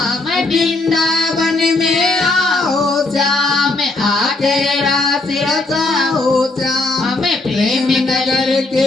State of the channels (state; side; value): quieter; right; 3.1 dB